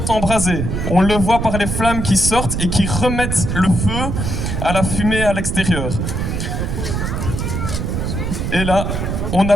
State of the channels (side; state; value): right; noise; rumble, 2 dB below the sound